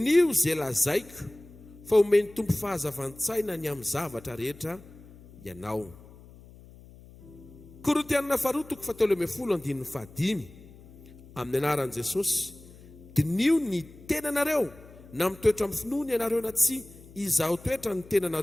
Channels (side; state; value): left; noise; hum, 21 dB below the sound